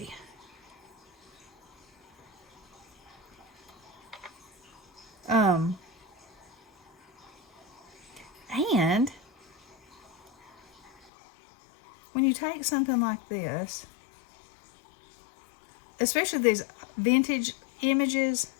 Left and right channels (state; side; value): drops out; right; at 10.9 s